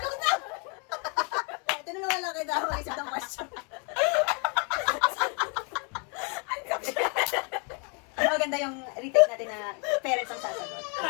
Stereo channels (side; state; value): right; quieter; 35.9 dB